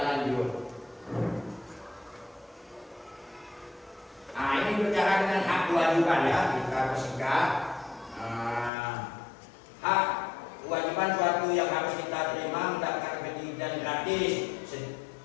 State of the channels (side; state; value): right; drops out; at 8.7 s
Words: Nah, ini bicara dengan hak kewajiban ya, kita persingkat. Hak kewajiban suatu yang harus kita terima mendapatkan pendidikan gratis.